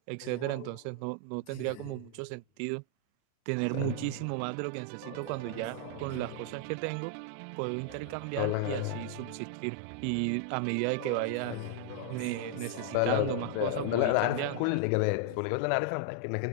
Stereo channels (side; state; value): both; different; correlation 0.00